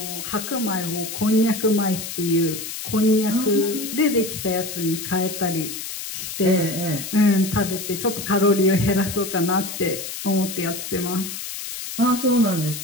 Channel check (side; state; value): left; noise; hiss, 7 dB below the sound